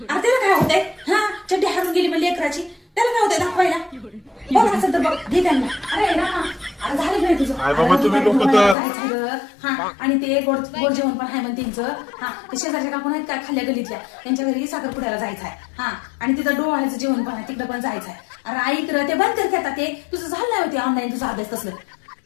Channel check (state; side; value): drops out; right; at 8.8 s